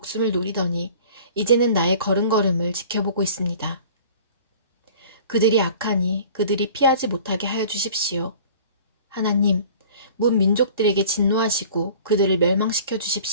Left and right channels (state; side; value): inverted; both; correlation -0.46